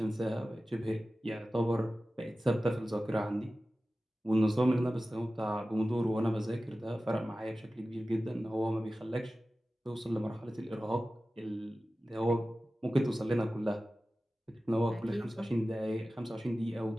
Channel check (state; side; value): normal; both; correlation 0.95